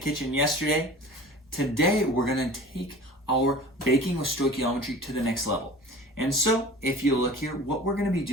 yesterday. Today we're going to take our baking with stoichiometry to the next level. And so if you look here, what we're going to be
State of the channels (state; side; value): normal; both; correlation 0.41